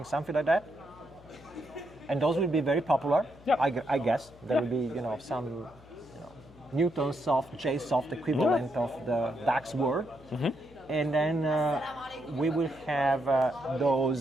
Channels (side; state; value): left; noise; hum, 23 dB below the sound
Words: something like that. And those will be very popular. I guess there will be some Newtonsoft, JSoft equivalent of the DAX word. And then we will have